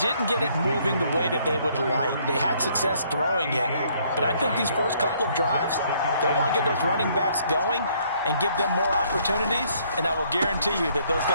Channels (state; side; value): inverted; both; correlation -0.66